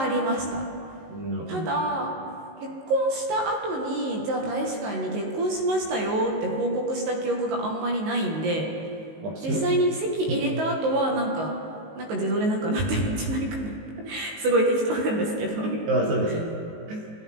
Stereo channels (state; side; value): late; left; 19 ms